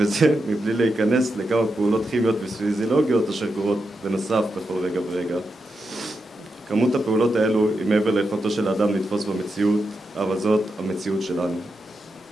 מבלי להיכנס לכמה פעולות כימיות ופיזיולוגיות אשר קורות בנוסף בכל רגע ורגע. כמות הפעולות האלו היא מעבר ליכולתו של האדם לתפוס במציאות, אבל זאת המציאות שלנו.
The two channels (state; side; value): normal; both; correlation 0.86